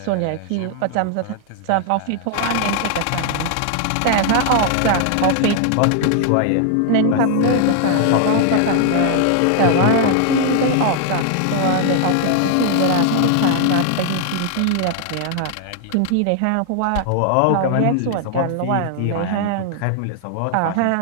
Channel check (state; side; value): different; both; correlation 0.00